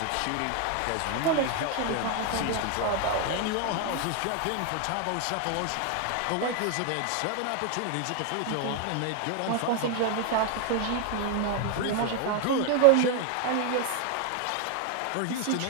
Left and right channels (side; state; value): both; different; correlation 0.01